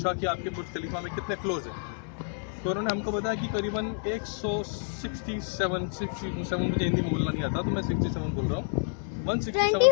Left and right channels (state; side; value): silent; right; digital silence